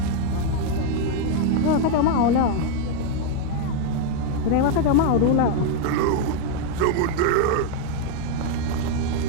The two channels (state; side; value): different; both; correlation 0.00